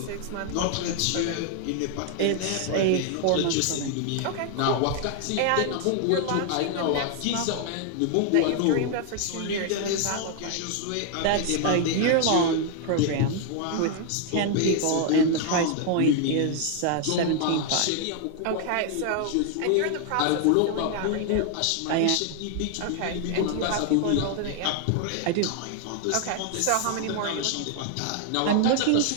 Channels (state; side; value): different; both; correlation 0.00